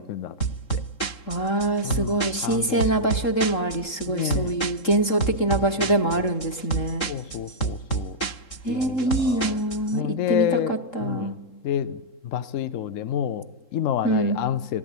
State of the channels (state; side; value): late; right; 3.7 ms